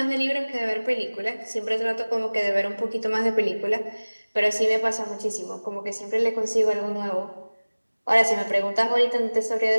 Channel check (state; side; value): inverted; both; correlation -1.00